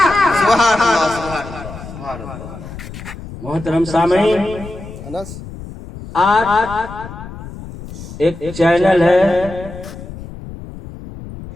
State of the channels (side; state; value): left; noise; rumble, 13 dB below the sound